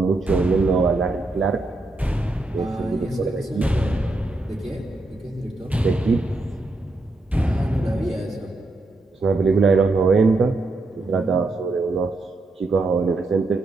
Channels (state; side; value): quieter; left; 3.0 dB